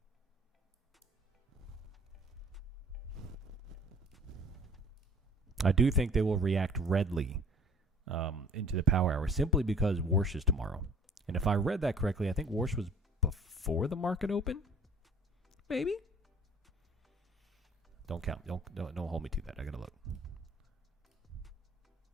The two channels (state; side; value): normal; both; correlation 0.51